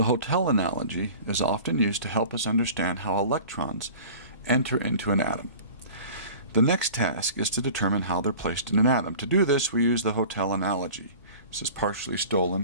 hotel analogy is often used to help us understand how electrons enter into an atom. The next task is to determine how they're placed in an atom. To do this, we use the hotel analogy. This is partially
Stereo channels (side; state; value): both; inverted; correlation -0.41